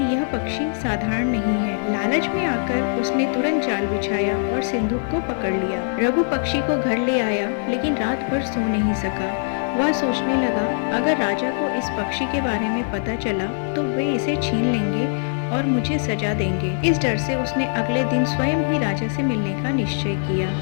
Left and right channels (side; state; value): right; silent; digital silence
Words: यह पक्षी साधारण नहीं है। लालच में आकर उसने तुरंत जाल बिछाया और सिंदूक को पकड़ लिया। रघु पक्षी को घर ले आया लेकिन रात भर सो नहीं सका। वह सोचने लगा, अगर राजा को इस पक्षी के बारे में पता चला तो वे इसे छीन लेंगे और मुझे सजा देंगे। इस डर से उसने अगले दिन स्वयं ही राजा से मिलने का निश्चय किया।